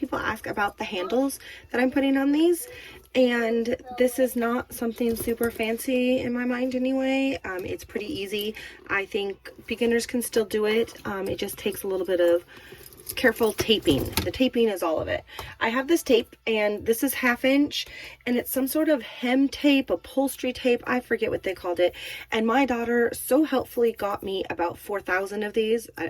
ask about the handles that I'm putting on these, and this is not something super fancy in my mind anyway. It's pretty easy. I think beginners can still do it. It just takes a little bit of careful taping. The taping is all of it. I have this tape, and this is 1/2 inch, and it's some sort of hem tape, upholstery tape. I forget what they called it. And my daughter so helpfully got me about 4,000 of these. I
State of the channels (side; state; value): both; identical; correlation 1.00